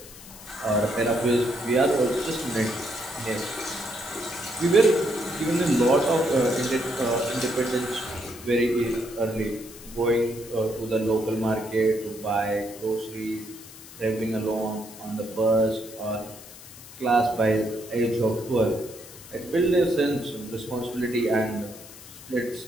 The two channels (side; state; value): left; noise; hiss, 17 dB below the sound